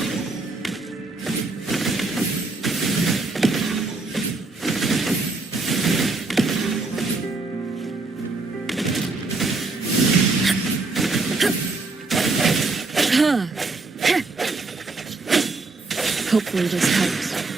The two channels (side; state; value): left; quieter; 3.6 dB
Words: Hopefully this helps.